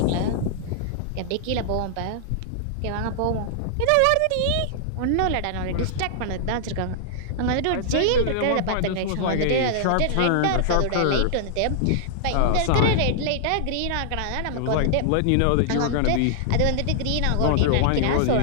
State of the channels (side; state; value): both; different; correlation -0.01